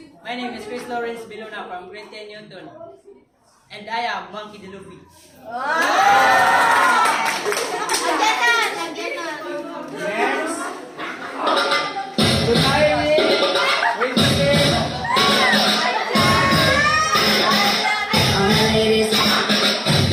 My name is Chris Lawrence Bilona from Grade 10 Newton. And I am Monkey the Luffy. Next. Good morning. Wait a minute.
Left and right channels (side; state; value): both; identical; correlation 1.00